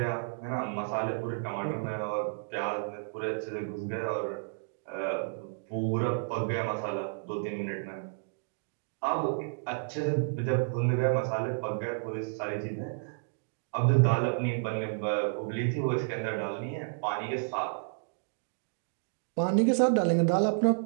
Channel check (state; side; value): silent; left; digital silence